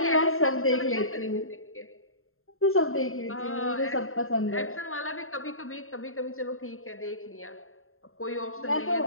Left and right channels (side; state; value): right; late; 0.61 ms